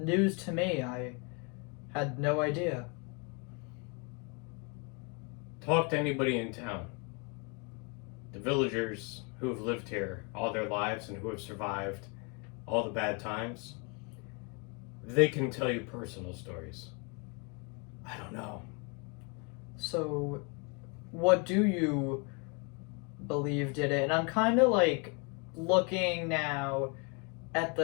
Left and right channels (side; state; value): right; quieter; 33.9 dB